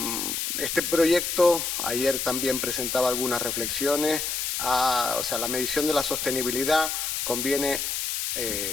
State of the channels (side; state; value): left; noise; hiss, 2 dB below the sound